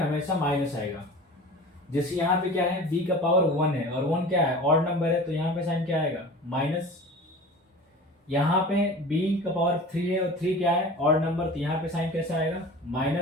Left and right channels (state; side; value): normal; both; correlation 0.38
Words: माइनस आएगा। जैसे यहाँ पे क्या है, b का पावर 1 है और 1 क्या है, ऑड नंबर है, तो यहाँ पे साइन क्या आएगा, माइनस। यहाँ पे b का पावर 3 है और 3 क्या है, ऑड नंबर, तो यहाँ पे साइन कैसा आएगा,